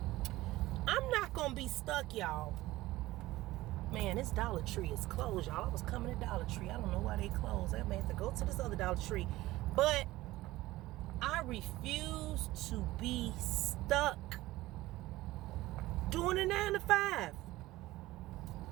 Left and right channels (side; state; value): left; quieter; 17.6 dB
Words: I'm not going to be stuck, y'all. Man, this Dollar Tree is closed, y'all. I was coming to Dollar Tree. I don't know why they closed. I may have to go to this other Dollar Tree. But I refuse to be stuck doing a 9 to 5.